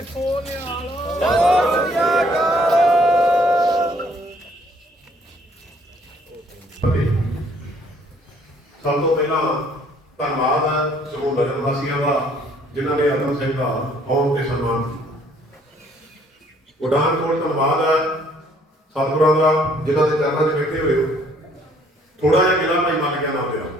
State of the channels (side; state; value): both; normal; correlation 0.62